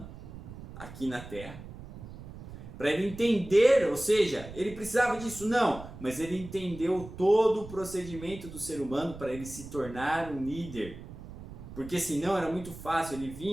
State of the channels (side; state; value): right; noise; rumble, 14 dB below the sound